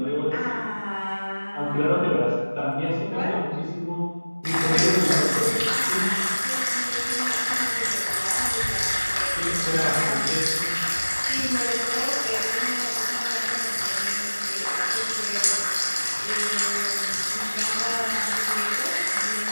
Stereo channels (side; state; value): both; inverted; correlation -1.00